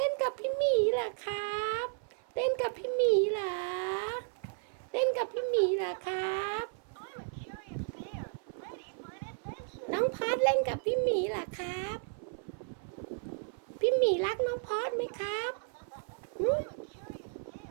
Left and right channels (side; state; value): left; silent; 55 dB below the other